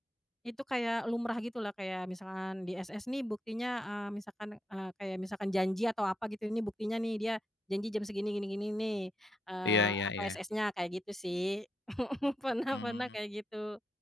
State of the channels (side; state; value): both; normal; correlation 0.82